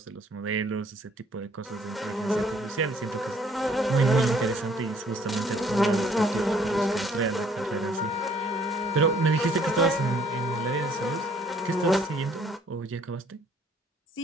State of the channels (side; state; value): both; normal; correlation 0.61